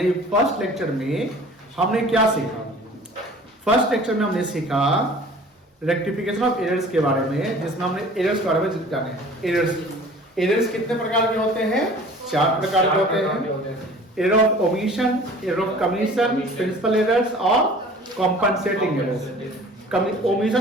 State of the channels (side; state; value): both; normal; correlation 0.47